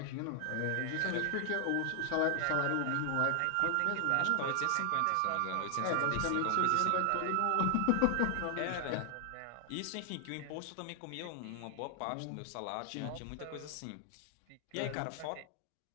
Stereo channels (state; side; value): different; both; correlation 0.00